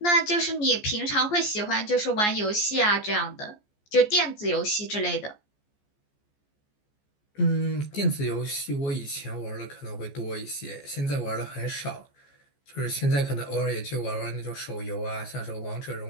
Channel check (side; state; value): right; late; 14 ms